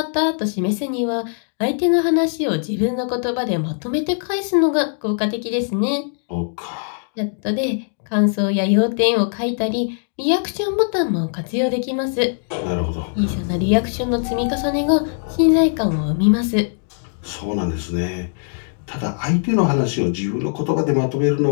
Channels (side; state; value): right; silent; digital silence